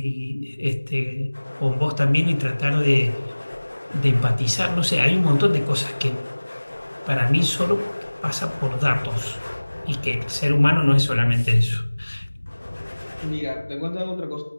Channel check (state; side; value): inverted; both; correlation -1.00